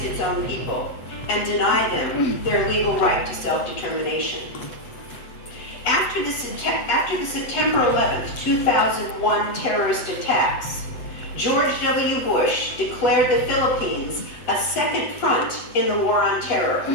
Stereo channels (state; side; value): late; right; 8.0 ms